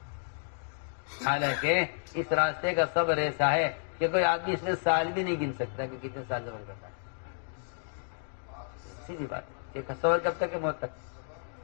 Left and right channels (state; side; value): silent; right; digital silence